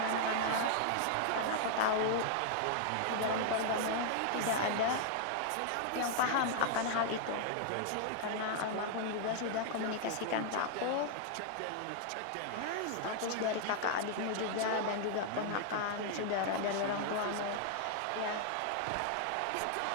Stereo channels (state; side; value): different; both; correlation 0.00